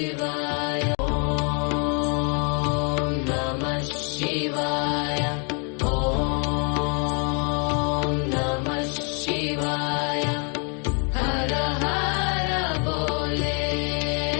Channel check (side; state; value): right; quieter; 38.5 dB